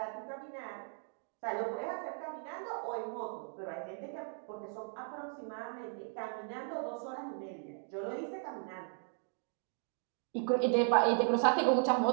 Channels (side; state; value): left; silent; 53 dB below the other